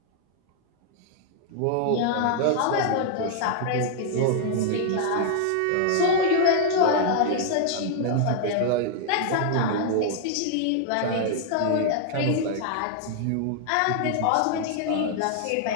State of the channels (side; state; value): both; different; correlation -0.01